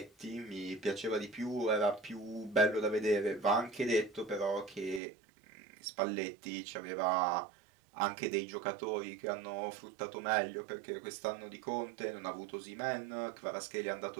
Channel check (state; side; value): drops out; left; at 5.0 s